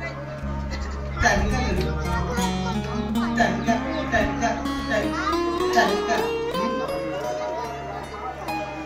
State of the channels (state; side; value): identical; both; correlation 1.00